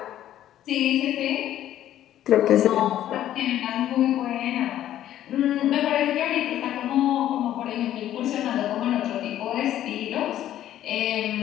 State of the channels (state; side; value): quieter; right; 12.1 dB